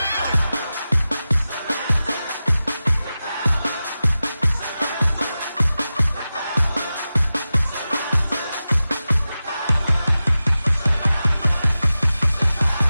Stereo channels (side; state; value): both; inverted; correlation -0.94